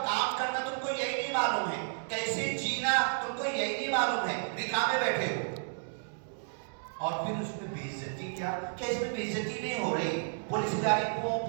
کام کرنا تم کو یہی نہیں معلوم ہے، کیسے جینا تم کو یہی نہیں معلوم ہے، نکاح میں بیٹھے ہو۔ اور پھر اس میں بے عزتی کیا کہ اس میں بے عزتی نہیں ہو رہی، پولیس گاڑی پوں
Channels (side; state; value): left; silent; digital silence